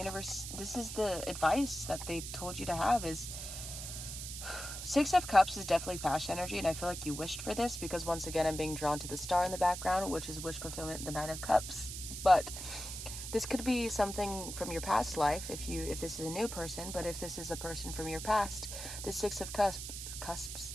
this is the advice that they told you to have is 6 of Cups is definitely passion energy, and I feel like you wished for this because once again I'm being drawn to the star in the background, which is wish fulfillment, the 9 of Cups. But this could be something from your past life if this is a new person, but if this is a person from your past, the 6 of Cups,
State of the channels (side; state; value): right; noise; hiss, 7 dB below the sound